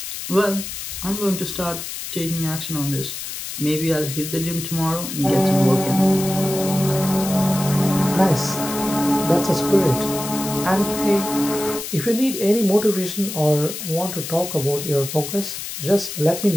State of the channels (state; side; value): noise; left; hiss, 7 dB below the sound